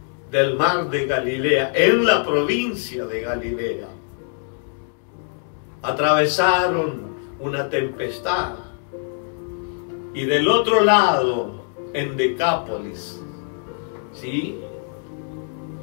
del mar de Galilea, en la provincia de Galilea. Atravesaron una tempestad. Y del otro lado, en Decápolis, ¿sí?,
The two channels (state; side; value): silent; right; 57 dB below the other